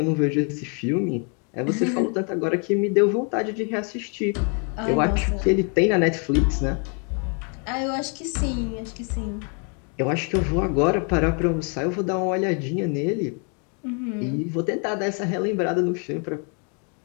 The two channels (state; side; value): quieter; right; 38.4 dB